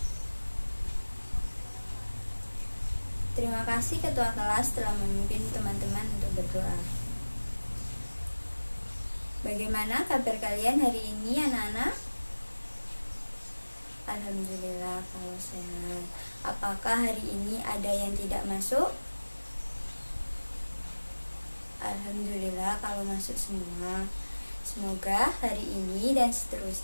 Terima kasih ketua kelas telah memimpin teman-teman untuk berdoa. Bagaimana kabar kalian hari ini anak-anak? Alhamdulillah kalau sehat. Apakah hari ini ada yang tidak masuk? Alhamdulillah kalau masuk semua. Semoga hari ini dan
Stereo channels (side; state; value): both; inverted; correlation -1.00